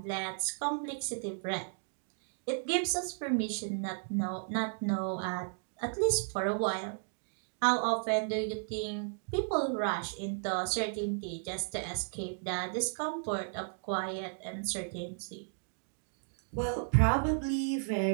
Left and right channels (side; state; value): left; silent; digital silence